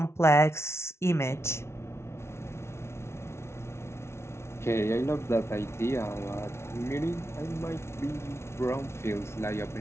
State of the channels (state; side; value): late; right; 0.13 ms